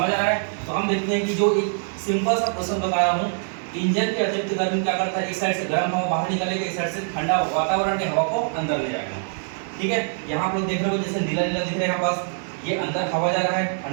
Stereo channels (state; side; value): silent; left; 63 dB below the other